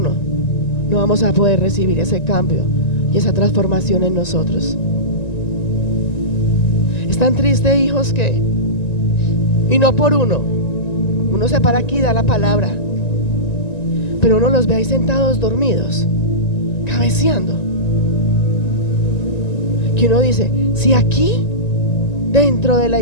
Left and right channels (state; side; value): late; right; 1.9 ms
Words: no vamos a poder recibir ese cambio y esa transformación en nosotros. Es tan triste, hijos, que, y no por uno se para aquí y da la palabra, pero uno los ve ahí sentados dormidos, cabeceando, que uno dice: si aquí dentro de la